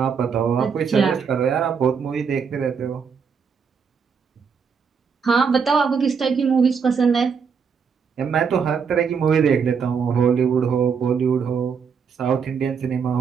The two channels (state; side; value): quieter; left; 6.2 dB